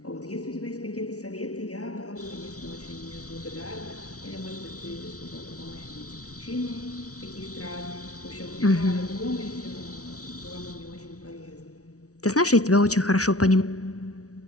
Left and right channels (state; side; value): late; right; 0.67 ms